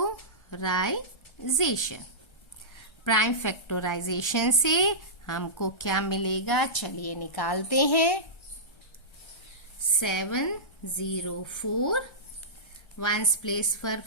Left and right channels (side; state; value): right; late; 1.3 ms